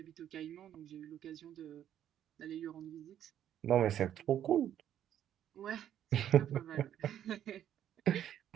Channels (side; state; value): left; quieter; 10.6 dB